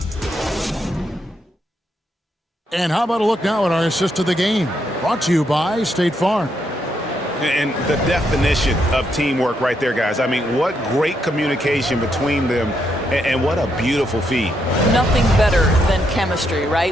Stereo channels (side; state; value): both; normal; correlation 0.78